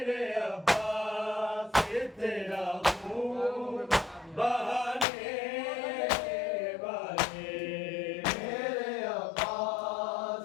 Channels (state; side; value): drops out; right; at 5.1 s